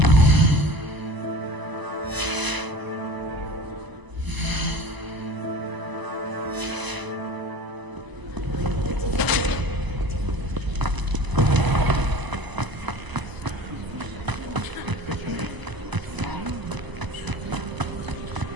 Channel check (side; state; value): left; late; 1.0 ms